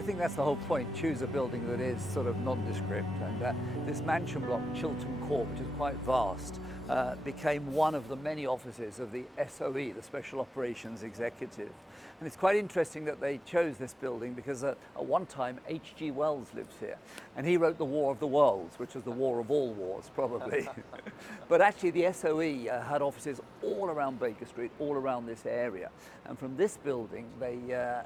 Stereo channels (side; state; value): both; normal; correlation 0.94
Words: think that's the whole point. Choose a building that is sort of nondescript. And this mansion block, Chiltern Court, which is quite vast, became one of the many offices of the SOE, the Special Operations Executive. And it's quite interesting that they chose this building because at one time H.G. Wells lives here. And he wrote The War of the Worlds, which was the war of all wars, probably. But actually the SOE had offices all around Baker Street, all around this area. And from this building, they